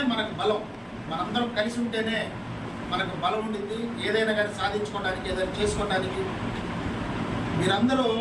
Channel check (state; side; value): identical; both; correlation 1.00